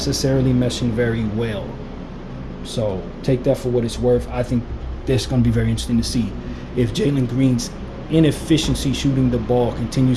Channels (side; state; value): both; identical; correlation 1.00